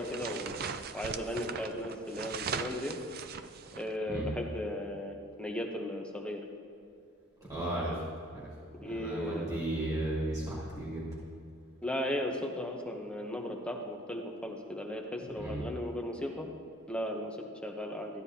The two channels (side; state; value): both; normal; correlation 0.55